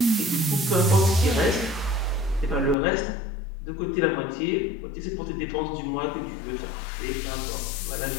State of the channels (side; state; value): right; drops out; at 2.8 s